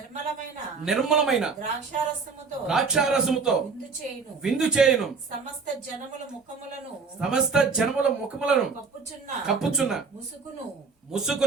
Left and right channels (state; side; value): quieter; left; 4.9 dB